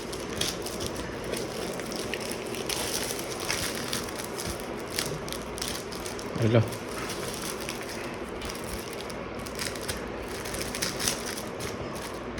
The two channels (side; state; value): both; identical; correlation 1.00